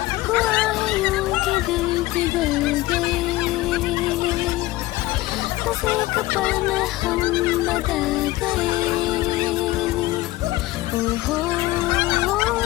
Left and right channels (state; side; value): quieter; right; 18.2 dB